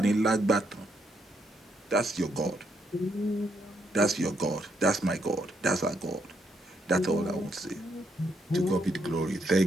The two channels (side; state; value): both; normal; correlation 0.76